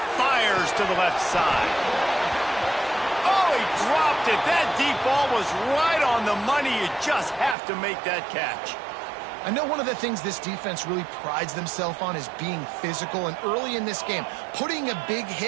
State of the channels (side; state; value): left; drops out; at 7.6 s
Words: fires to the left side. Oh, he dropped it. That deep ball was right on the money. You just have to make that catch. I know one of the things this defense really prides themselves on is being physical, and early in this game, putting a big